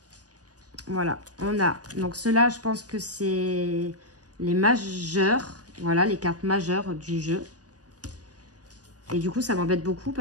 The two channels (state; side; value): late; left; 0.68 ms